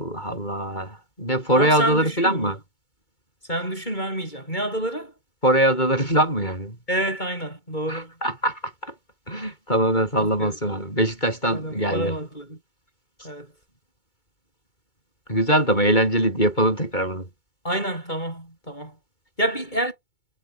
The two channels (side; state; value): right; late; 2.2 ms